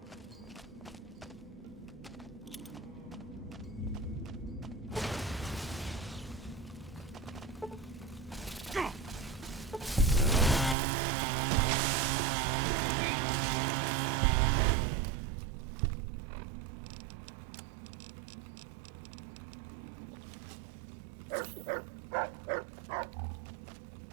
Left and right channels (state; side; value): drops out; left; at 10.8 s